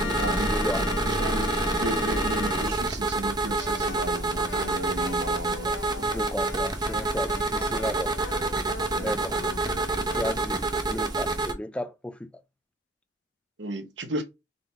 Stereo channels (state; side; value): normal; both; correlation 0.48